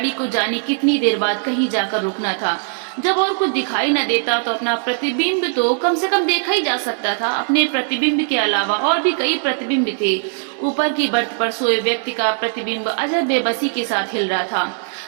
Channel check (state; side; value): silent; left; 66 dB below the other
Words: को जाने कितनी देर बाद कहीं जाकर रुकना था। जब और कुछ दिखाई न देता तो अपना प्रतिबिंब तो कम से कम देखा ही जा सकता था। अपने प्रतिबिंब के अलावा और भी कई प्रतिबिंब थे। ऊपर की बर्थ पर सोए व्यक्ति का प्रतिबिंब अजब बेबसी के साथ हिल रहा था।